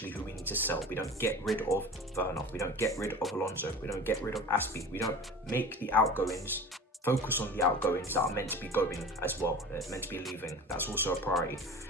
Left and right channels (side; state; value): both; normal; correlation 0.36